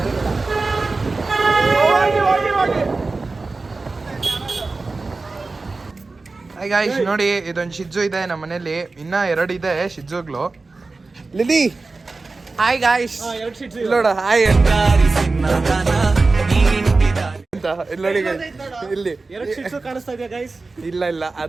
ಗೈಸ್ ನೋಡಿ ಇದೊಂದು ಶಿಜ್ಜು ಇದೆ ನಮ್ಮ ಮನೇಲಿ ಇನ್ನ 2 ಇದೆ ಶಿಜ್ಜುಗಳು ಲಿಲಿ ಹಾಯ್ ಗಾಯ್ಸ್ ನೋಡ ಹಾಯ್ ಅಂತ ಇಲ್ಲಿ ನೋಡಿ ಇಲ್ಲಿ 2 ಶಿಟ್ಸು ಕಾಣಿಸ್ತಾ ಇದೆ ಗೈಸ್. ಇಲ್ಲ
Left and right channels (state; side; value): quieter; left; 3.7 dB